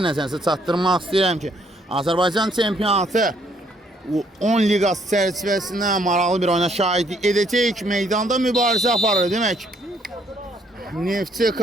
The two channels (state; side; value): normal; both; correlation 0.68